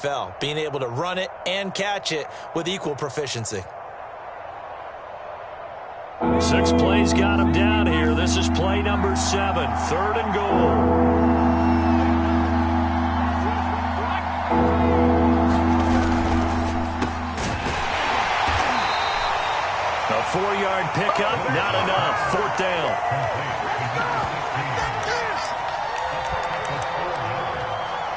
being able to run it and catch it with equal proficiency. 6 plays got him down here. This is play number 7, 3rd and goal. A 4-yard pickup, not enough. 4th down.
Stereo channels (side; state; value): both; identical; correlation 1.00